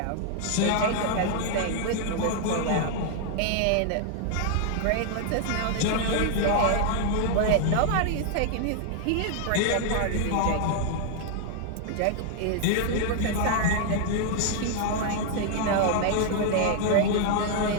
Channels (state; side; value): different; both; correlation 0.00